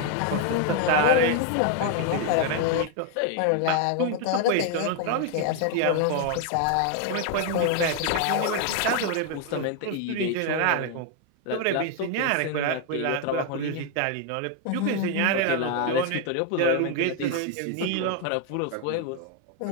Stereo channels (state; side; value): different; both; correlation 0.00